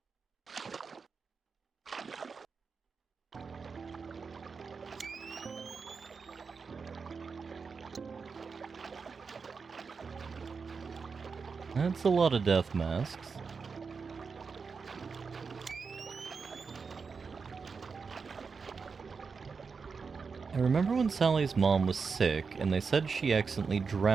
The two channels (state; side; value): quieter; left; 5.2 dB